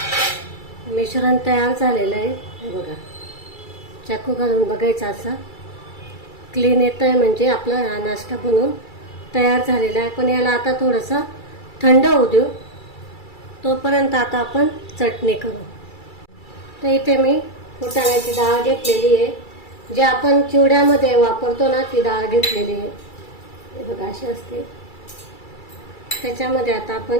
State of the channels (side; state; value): right; late; 2.3 ms